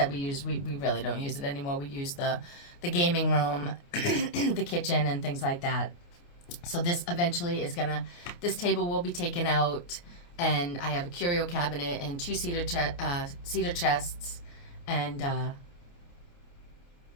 use, we really don't use it anymore. We use the gaming room, the kitchen, and things like that. So this eventually this table will be taken out, and I have a curio cabinet and two cedar chests, and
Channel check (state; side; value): late; right; 29 ms